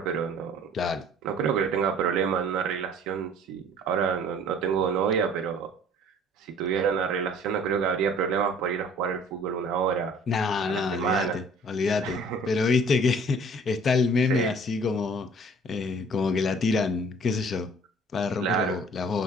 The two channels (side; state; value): both; normal; correlation 0.51